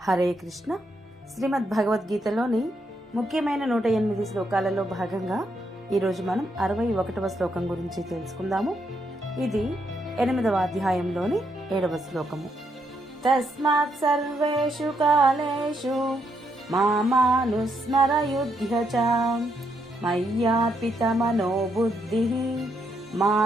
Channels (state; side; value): normal; both; correlation 0.77